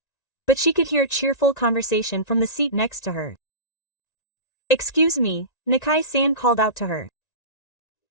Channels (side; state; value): right; late; 1.9 ms